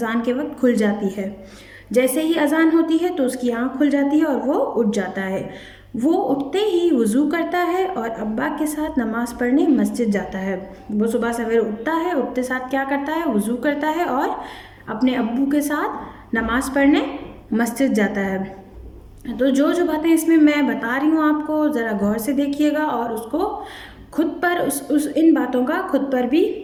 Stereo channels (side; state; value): both; identical; correlation 1.00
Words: के वक्त खुल जाती है। जैसे ही अजान होती है तो उसकी आंख खुल जाती है और वो उठ जाता है। वो उठते ही वज़ू करता है और अब्बा के साथ नमाज़ पढ़ने मस्जिद जाता है। वो सुबह सवेरे उठता है, उठते साथ क्या करता है? वज़ू करता है और अपने अब्बू के साथ नमाज़ पढ़ने मस्जिद जाता है। तो जो जो बातें इसमें मैं बता रही हूँ आपको, ज़रा गौर से देखिएगा और उसको खुद पर इन बातों का खुद पर भी